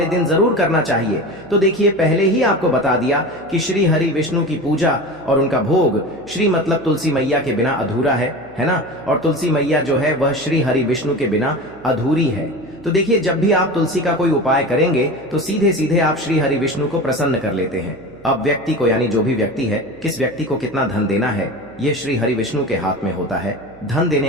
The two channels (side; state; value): right; noise; hum, 24 dB below the sound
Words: दिन जरूर करना चाहिए। तो देखिए, पहले ही आपको बता दिया कि श्री हरि विष्णु की पूजा और उनका भोग श्री मतलब तुलसी मैया के बिना अधूरा है ना। और तुलसी मैया जो है वह श्री हरि विष्णु के बिना अधूरी है। तो देखिए, जब भी आप तुलसी का कोई उपाय करेंगे तो सीधे सीधे आप श्री हरि विष्णु को प्रसन्न कर लेते हैं। अब व्यक्ति को, यानी जो भी व्यक्ति है, किस व्यक्ति को कितना धन देना है, ये श्री हरि विष्णु के हाथ में होता है। धन